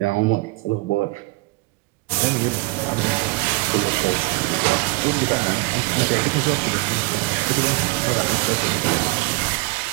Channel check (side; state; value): left; quieter; 24.7 dB